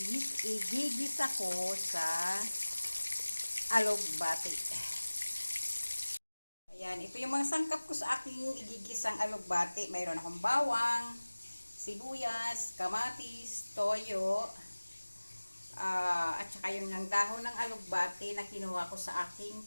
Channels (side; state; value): both; inverted; correlation -1.00